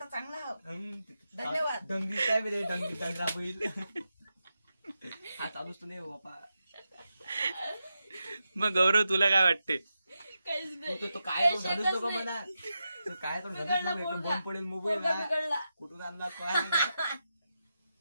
चांगला आहो. धन्यवाद. डंगी काय बरे डंगी डंगरा बैल हा चालूच नाही हो बापा. मग गौरव तुला काय वाटते? तो काय तो झालंच नको म्हणा. तो काय तो झालंच नको. एकदम बंद पडेल मोबाईल कुठून आणला काय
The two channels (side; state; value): both; inverted; correlation -0.89